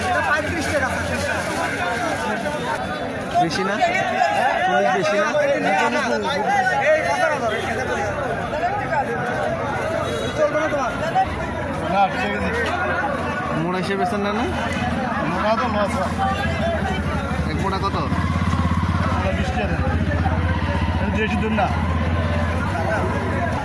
35 টাকা বেশি না? 40 বেশি না? মোড়া হিসেবে বেছেন না? না এক মোটা কত? 20 টাকা দেশি দুন না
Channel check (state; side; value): identical; both; correlation 1.00